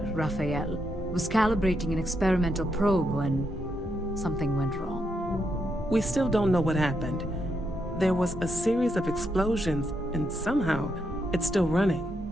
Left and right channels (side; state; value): both; normal; correlation 0.80